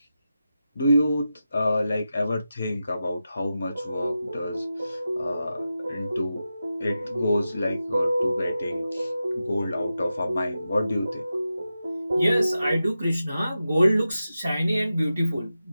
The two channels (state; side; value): inverted; both; correlation -0.91